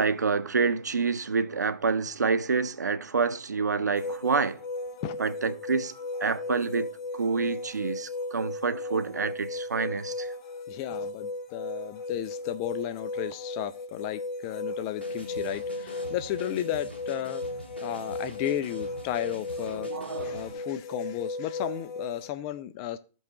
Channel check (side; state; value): both; inverted; correlation -0.35